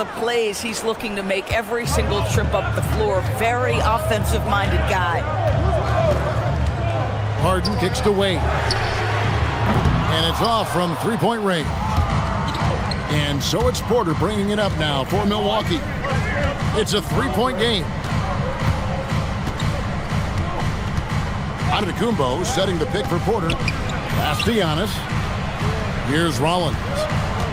plays he's looking to make every single trip up the floor. Very offensive-minded guy. Harden kicks to Wade. And it's off from three-point range. And so it's Porter bringing it up now for Milwaukee. It's a three-point game. Antetokounmpo setting the pick for Porter. Pass to Giannis. Here's Rollins.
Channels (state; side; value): identical; both; correlation 1.00